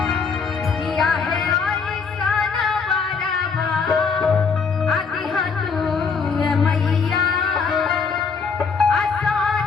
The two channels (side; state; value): right; quieter; 5.4 dB